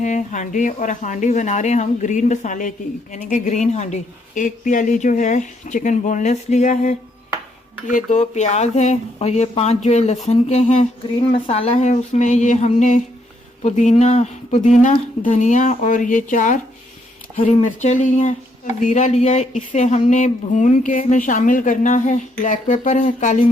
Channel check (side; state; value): both; normal; correlation 0.73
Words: हांडी, और हांडी बना रहे हैं हम ग्रीन मसाले की, यानी कि ग्रीन हांडी। एक प्याली जो है चिकन बोनलेस लिया है, ये 2 प्याज है और ये 5 जो है लहसुन के हैं। ग्रीन मसाला है, उसमें ये हमने पुदीना धनिया और ये 4 हरी मिर्चें ली हैं, जीरा लिया है, इसे हमने भून के इसमें शामिल करना है। ब्लैक पेपर है, काली